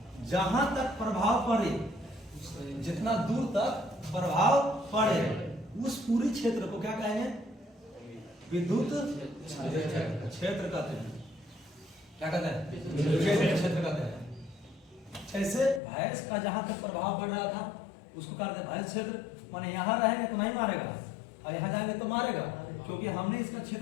जहां तक प्रभाव पड़े, जितना दूर तक प्रभाव पड़े, उस पूरी क्षेत्र को क्या कहेंगे? विद्युत क्षेत्र कहते हैं। क्या कहते हैं? क्षेत्र कहते हैं। जैसे भैंस का जहां तक प्रभाव पड़ रहा था उसको कहते हैं भैंस क्षेत्र। माने यहाँ रहेंगे तो नहीं मारेगा और यहाँ जाएंगे तो मारेगा, क्योंकि हमने इसका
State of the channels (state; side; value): drops out; right; at 15.8 s